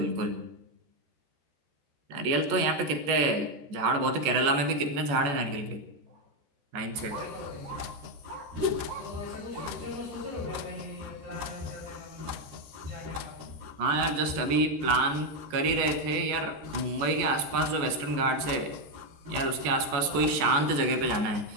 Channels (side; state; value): left; late; 14 ms